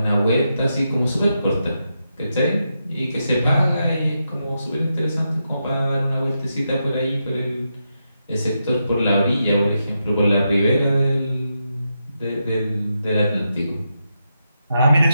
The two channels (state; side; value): inverted; both; correlation -0.85